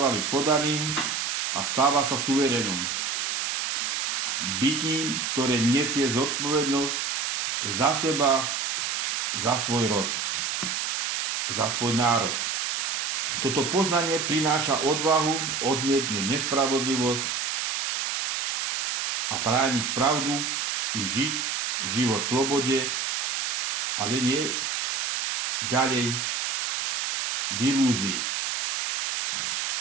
byť podaným a stáva sa suverénom. Bytím, ktoré nesie zodpovednosť za seba, za svoj rod, za svoj národ. Toto poznanie prináša odvahu odmietnúť nespravodlivosť a brániť pravdu i žiť život v slobode, ale nie ďalej v ilúzii.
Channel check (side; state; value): right; noise; hiss, 1 dB below the sound